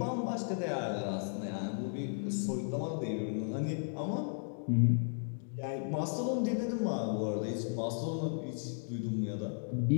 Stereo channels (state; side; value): silent; right; digital silence